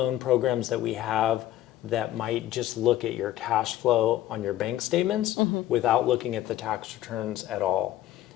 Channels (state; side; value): quieter; right; 13.8 dB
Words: programs that we have that might just look at your cash flow on your bank statements without looking at the tax returns at all.